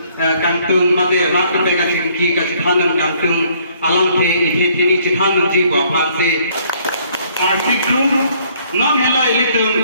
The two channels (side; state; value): both; inverted; correlation -0.63